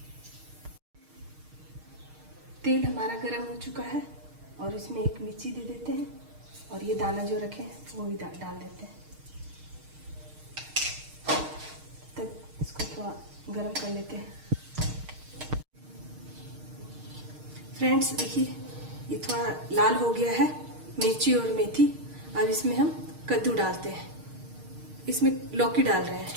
तेल हमारा गरम हो चुका है और इसमें एक मिर्ची दे देते हैं और ये दाना जो रखे हैं वो भी डाल देते हैं। तब इसको थोड़ा गरम कर लेते हैं। फ्रेंड्स, देखिए ये थोड़ा लाल हो गया है, मिर्ची और मेथी। अब इसमें हम कद्दू डालते हैं। इसमें लौकी डाल रहे हैं।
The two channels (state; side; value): late; left; 6.5 ms